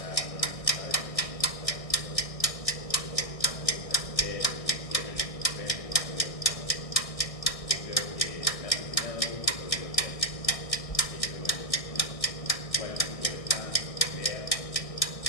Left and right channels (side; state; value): right; late; 1.6 ms